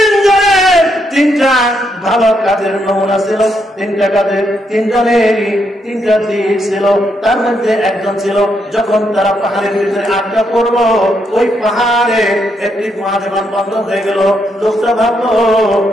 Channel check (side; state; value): both; normal; correlation 0.78